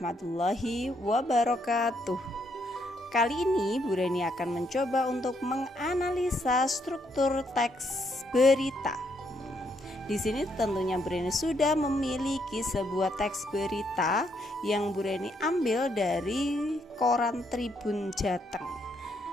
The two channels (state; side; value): normal; both; correlation 0.74